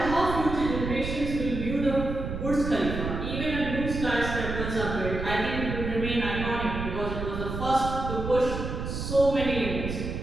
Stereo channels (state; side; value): noise; right; rumble, 5 dB below the sound